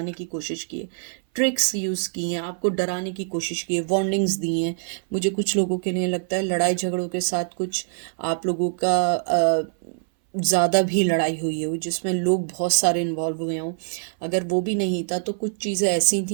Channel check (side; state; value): left; silent; 61 dB below the other